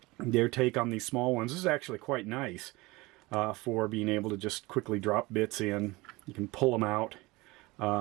their take on these small ones. This is actually quite nice for being able to just quickly drop bits in. You can pull them out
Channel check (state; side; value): quieter; left; 22.2 dB